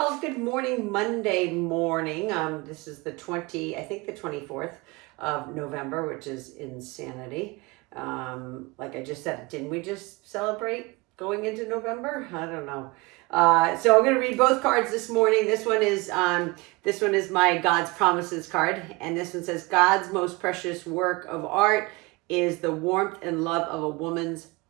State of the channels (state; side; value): quieter; left; 24.8 dB